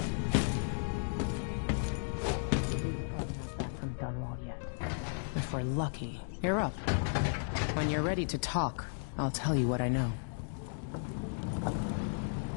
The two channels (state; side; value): silent; right; digital silence